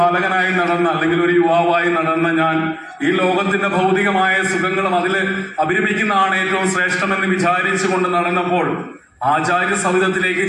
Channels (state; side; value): identical; both; correlation 1.00